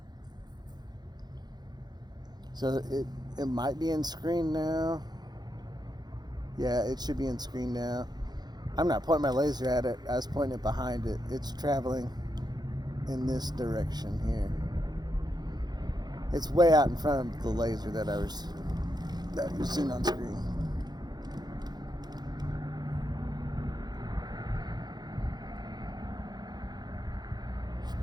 So it might be in screen now. Yeah, it should be in screen now. I'm not pointing my laser at it. I was pointing it behind it. It's traveling in this direction here. It's way out in front of the laser that you've seen on screen.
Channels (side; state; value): left; late; 0.20 ms